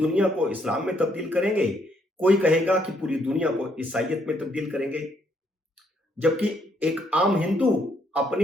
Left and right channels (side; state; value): both; normal; correlation 0.71